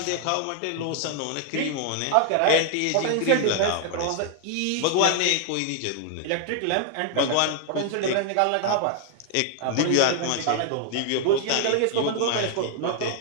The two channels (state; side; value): different; both; correlation 0.00